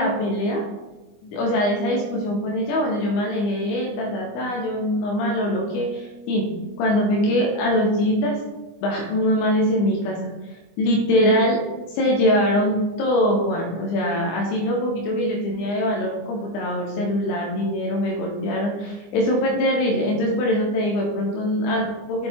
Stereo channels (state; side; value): late; right; 25 ms